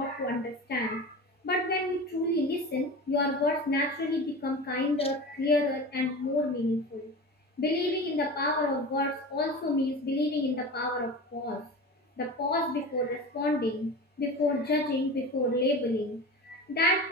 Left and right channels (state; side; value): normal; both; correlation 0.31